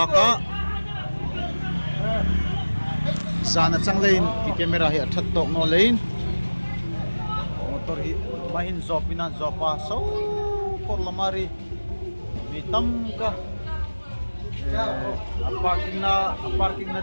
sana chang lein ki camera hi athat tok no lein motor hi mahin zopina zopa so por lamari mitam ka parking na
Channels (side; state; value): both; inverted; correlation -1.00